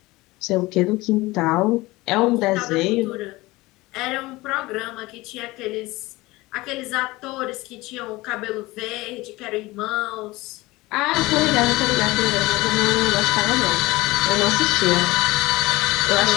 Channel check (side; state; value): right; quieter; 20.6 dB